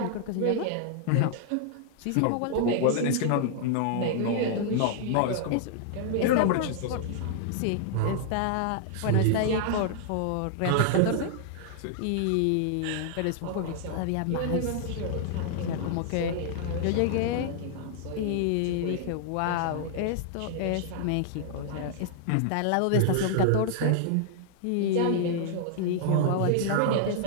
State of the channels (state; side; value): different; both; correlation -0.01